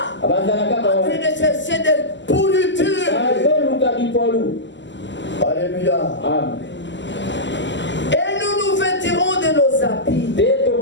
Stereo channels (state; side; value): late; right; 0.53 ms